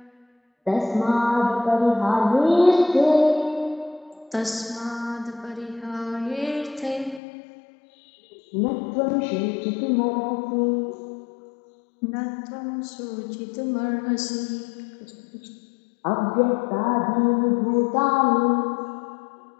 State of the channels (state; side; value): drops out; right; at 7.2 s